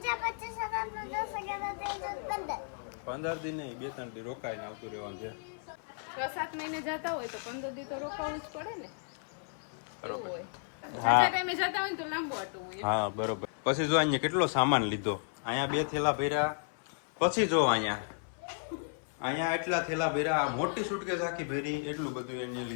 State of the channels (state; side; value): silent; right; 55 dB below the other